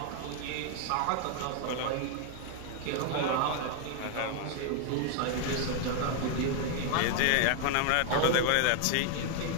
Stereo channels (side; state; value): both; different; correlation 0.00